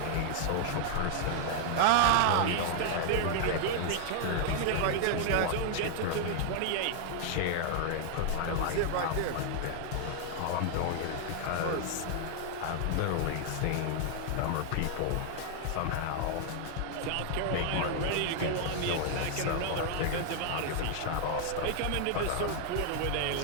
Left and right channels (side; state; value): both; different; correlation 0.00